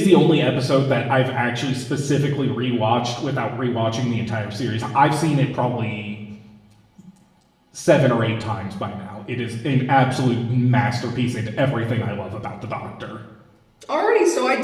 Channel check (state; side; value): identical; both; correlation 1.00